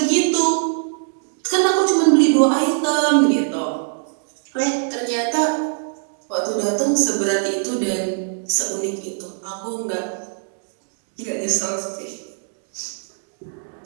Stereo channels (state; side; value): silent; left; digital silence